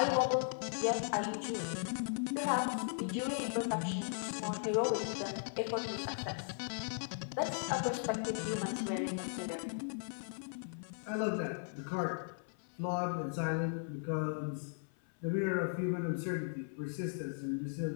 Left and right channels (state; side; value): silent; right; 53 dB below the other